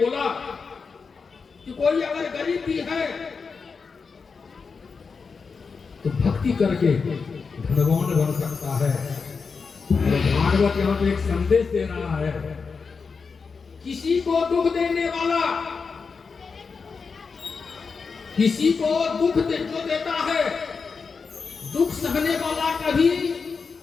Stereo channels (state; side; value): quieter; right; 5.1 dB